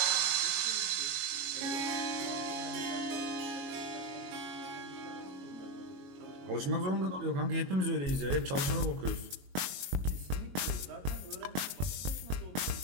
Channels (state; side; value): late; left; 22 ms